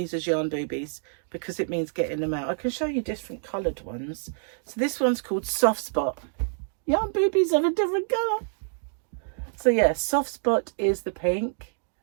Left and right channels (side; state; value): left; silent; digital silence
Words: as yarn boobies because it means getting them out. I can show you different coloured ones. So this one's called Soft Spot. Yarn boobies of a different colour. So yeah, Soft Spot is the pink.